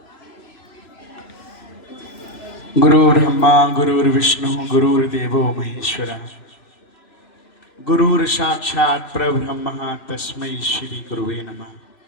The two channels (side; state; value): right; late; 3.0 ms